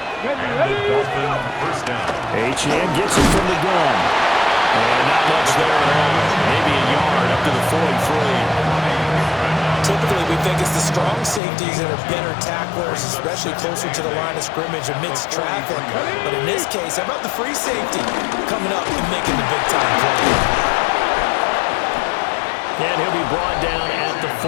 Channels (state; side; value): drops out; right; at 11.4 s